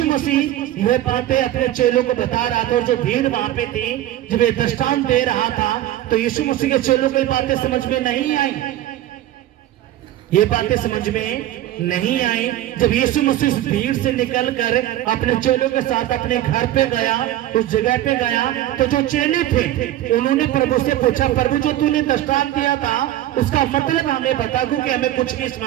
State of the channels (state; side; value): quieter; left; 13.6 dB